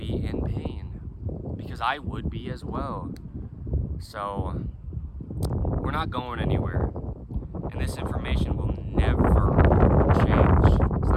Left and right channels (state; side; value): identical; both; correlation 1.00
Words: in pain, because I would be as well. So, we're not going anywhere, and this information will never change. It's